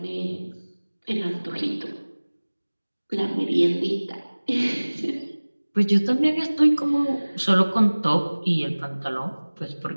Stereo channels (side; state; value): both; inverted; correlation -1.00